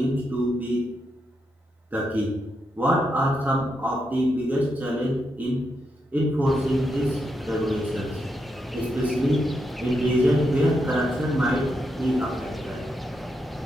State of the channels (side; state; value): both; normal; correlation 0.83